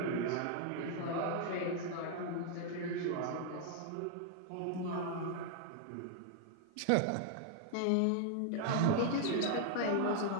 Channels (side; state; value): both; different; correlation 0.00